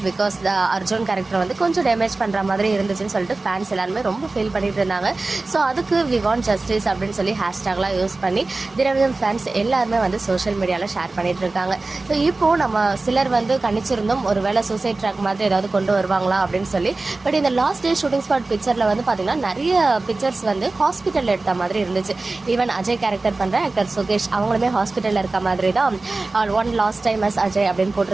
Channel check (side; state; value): left; quieter; 3.4 dB